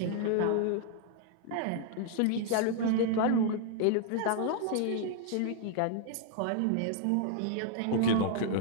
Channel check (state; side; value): different; both; correlation -0.01